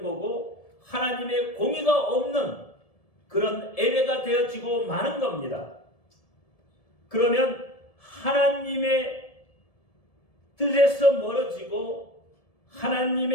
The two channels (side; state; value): right; late; 1.7 ms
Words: 거고, 하나님의 공의가 없는 그런 예배가 되어지고 마는 겁니다. 그러면 하나님의 뜻에서 멀어지고